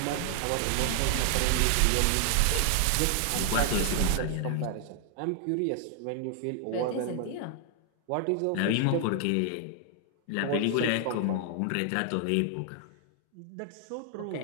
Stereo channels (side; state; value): both; different; correlation 0.00